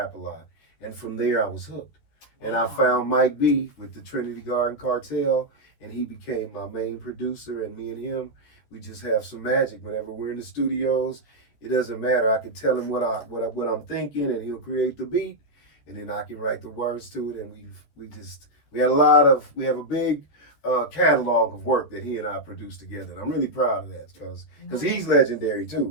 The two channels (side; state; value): right; late; 13 ms